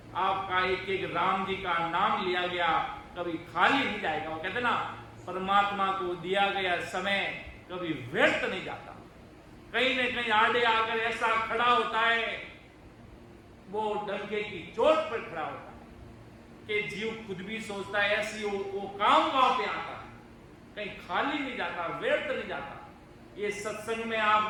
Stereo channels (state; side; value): identical; both; correlation 1.00